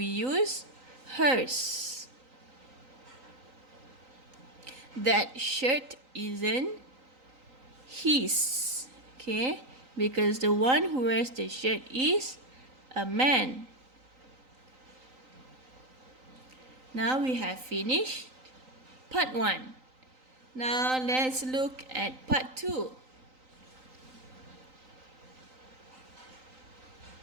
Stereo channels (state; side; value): late; left; 3.9 ms